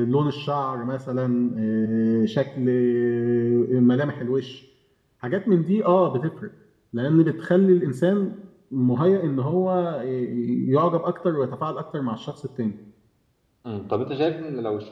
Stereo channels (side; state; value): both; identical; correlation 1.00